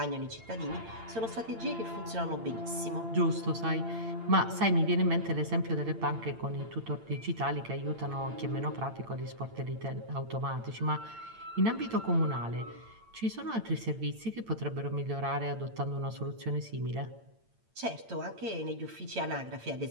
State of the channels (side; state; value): left; late; 8.8 ms